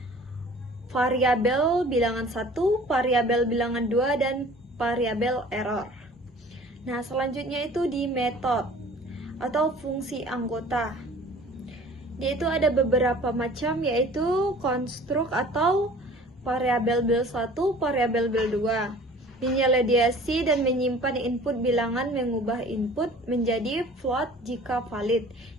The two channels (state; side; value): normal; both; correlation 0.47